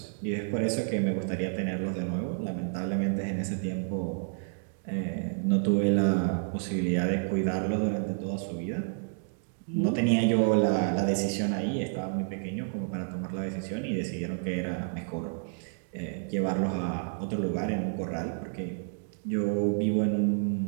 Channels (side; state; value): left; silent; digital silence